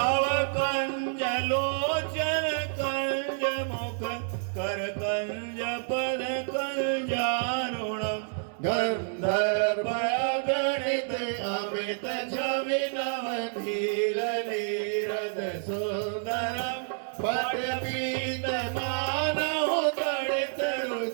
कंज लोचन कंज मुख कर कंज पद कंजारुणम। गंधर्व गणित अमित छवि नव धीर नीरद सुंदरम। पट पीत मानव तड़ित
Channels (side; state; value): left; silent; digital silence